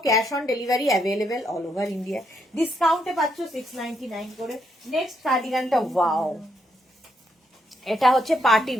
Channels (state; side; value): normal; both; correlation 0.77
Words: cash on delivery available all over India. ডিসকাউন্টে পাচ্ছ 699 করে। নেক্সট কার্ডিগানটা, ওয়াও, এটা হচ্ছে party